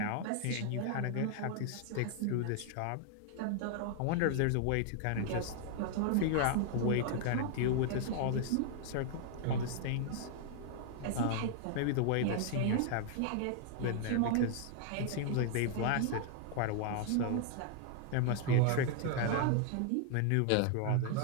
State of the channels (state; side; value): different; both; correlation 0.00